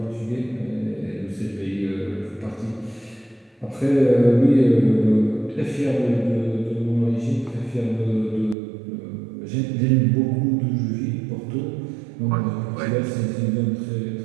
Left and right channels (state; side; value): drops out; left; at 8.6 s